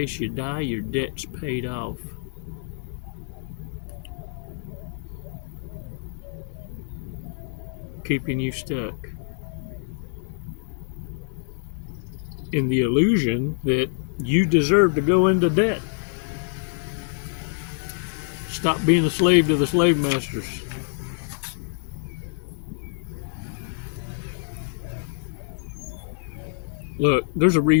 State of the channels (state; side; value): silent; right; digital silence